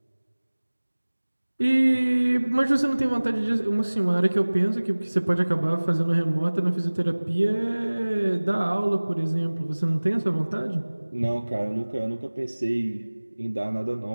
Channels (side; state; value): both; inverted; correlation -1.00